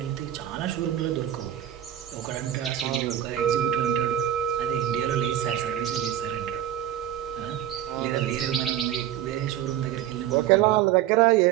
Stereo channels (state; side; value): quieter; left; 11.6 dB